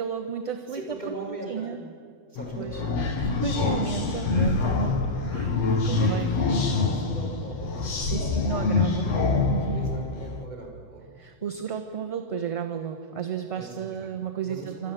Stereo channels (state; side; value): late; right; 8.0 ms